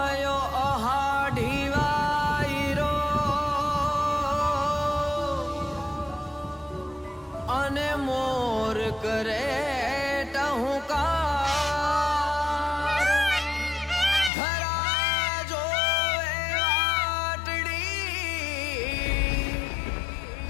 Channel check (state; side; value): drops out; right; at 14.3 s